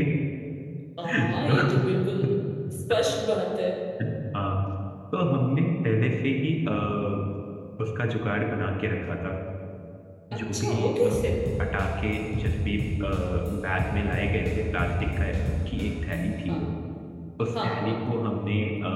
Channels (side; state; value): both; identical; correlation 1.00